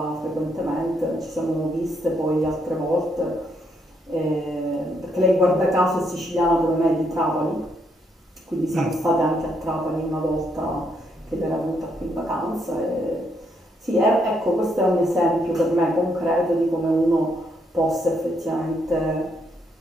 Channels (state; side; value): normal; both; correlation 0.75